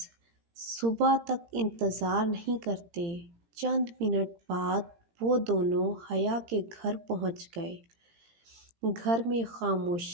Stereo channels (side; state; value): left; late; 17 ms